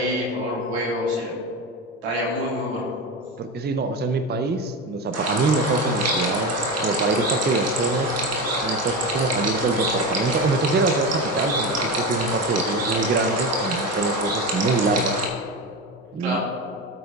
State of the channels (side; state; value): both; normal; correlation 0.21